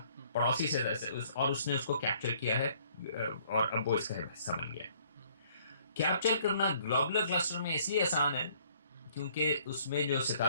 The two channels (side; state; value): both; inverted; correlation -0.61